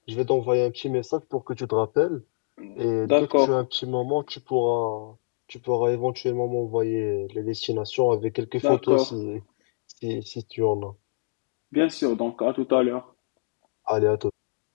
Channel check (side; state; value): right; silent; digital silence